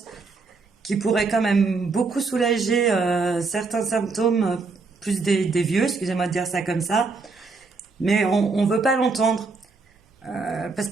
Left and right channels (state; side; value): quieter; left; 4.1 dB